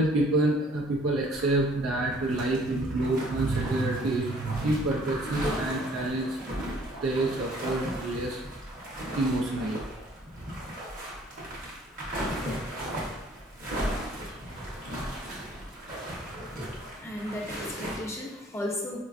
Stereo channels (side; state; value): both; normal; correlation 0.58